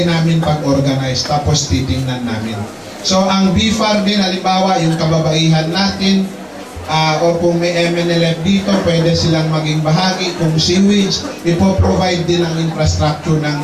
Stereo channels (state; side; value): identical; both; correlation 1.00